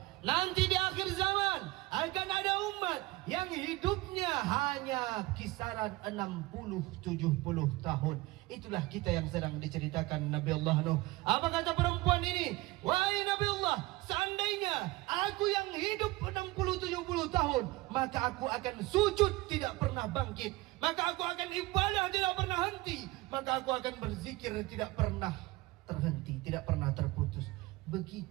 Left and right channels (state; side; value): quieter; left; 20.3 dB